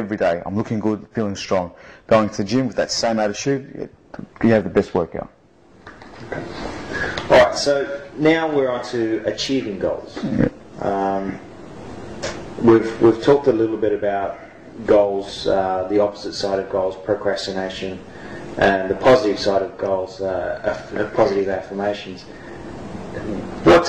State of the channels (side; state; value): both; identical; correlation 1.00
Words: day. I'm looking good, feeling strong. Going to the gym with that same attitude, you have the best workout. Okay. All right. So now we're on to achieving goals. Yeah. We've talked a little bit about goals, the opposite side of goals, procrastination, and the positive side of goals, positive affirmations. What